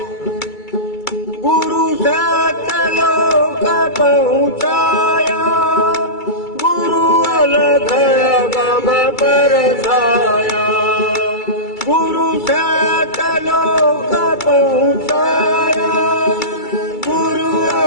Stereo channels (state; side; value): late; right; 2.3 ms